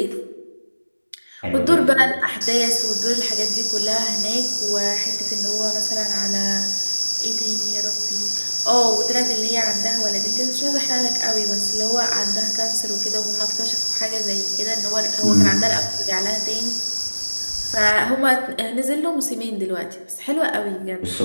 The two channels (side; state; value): both; inverted; correlation -1.00